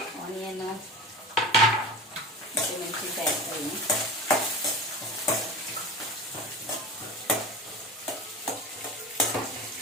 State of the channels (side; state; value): both; normal; correlation 0.32